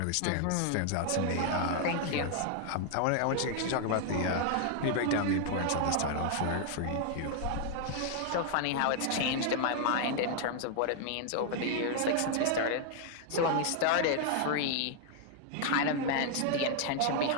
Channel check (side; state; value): both; different; correlation 0.00